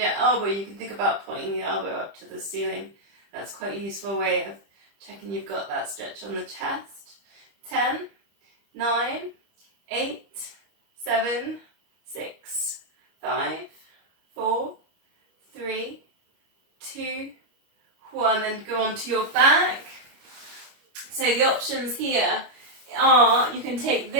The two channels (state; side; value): late; left; 25 ms